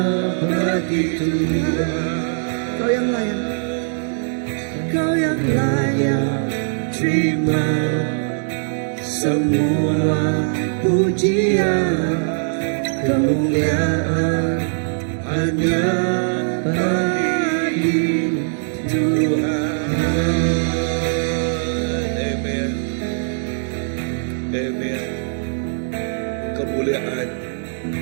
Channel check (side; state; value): left; silent; digital silence